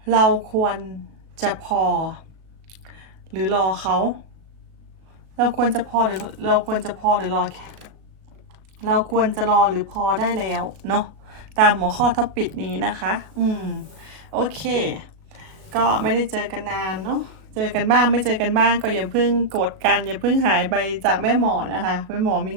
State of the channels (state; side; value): late; left; 37 ms